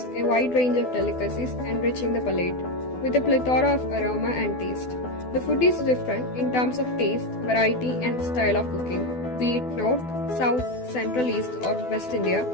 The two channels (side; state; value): right; late; 12 ms